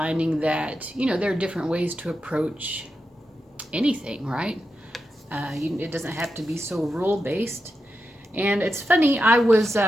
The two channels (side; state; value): both; normal; correlation 0.88